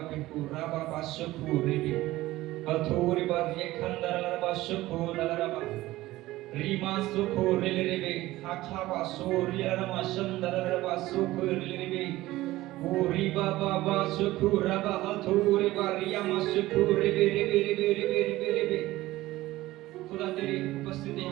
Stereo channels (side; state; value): left; quieter; 17.2 dB